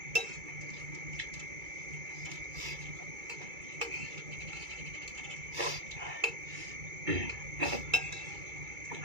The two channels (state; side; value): late; left; 2.3 ms